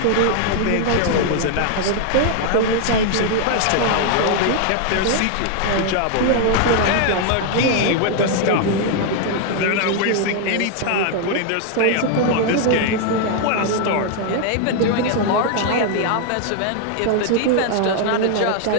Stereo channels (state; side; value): different; both; correlation 0.00